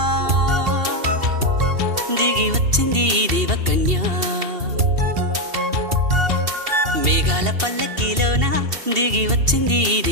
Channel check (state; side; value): late; left; 2.7 ms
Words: దిగి వచ్చింది దేవకన్య మేఘాల పల్లకిలోనా దిగి వచ్చింది